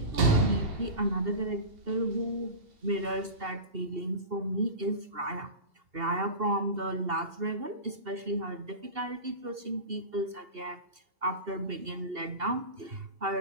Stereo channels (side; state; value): left; late; 2.7 ms